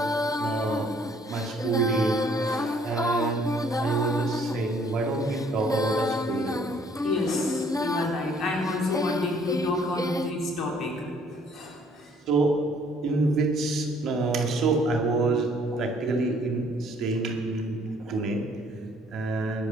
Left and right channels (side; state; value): both; normal; correlation 0.61